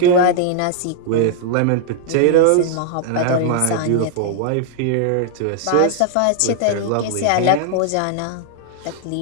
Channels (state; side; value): different; both; correlation -0.01